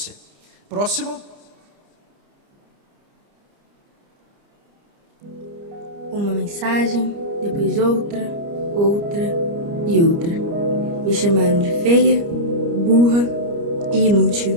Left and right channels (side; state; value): left; late; 29 ms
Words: Próximo. Uma mensagem, depois outra, outra e outra. Me chamaram de feia, burra e inútil.